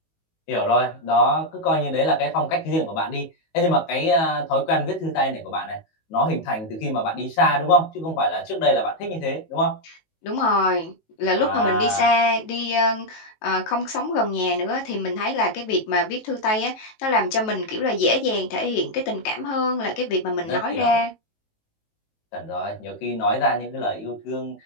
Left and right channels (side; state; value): right; late; 19 ms